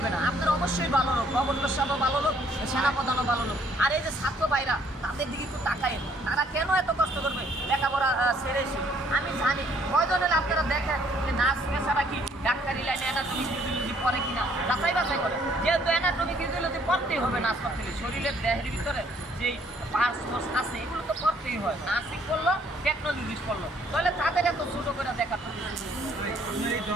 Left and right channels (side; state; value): both; normal; correlation 0.64